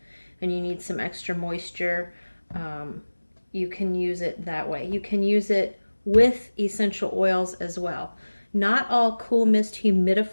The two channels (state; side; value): inverted; both; correlation -1.00